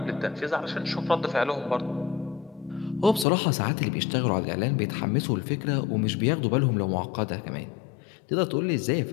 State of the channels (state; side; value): drops out; right; at 3.2 s